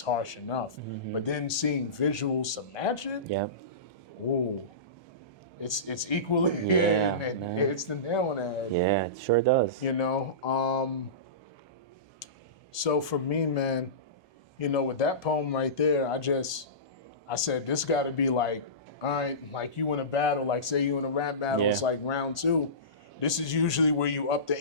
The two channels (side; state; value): right; late; 1.2 ms